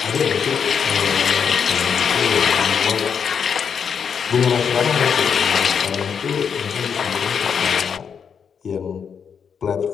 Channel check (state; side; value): quieter; right; 6.9 dB